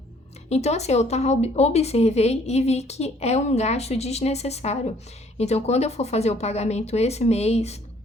Então, assim, eu observei e vi que é um gasto desnecessário. Então, quando eu for fazer o pagamento esse mês,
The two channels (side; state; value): both; normal; correlation 0.61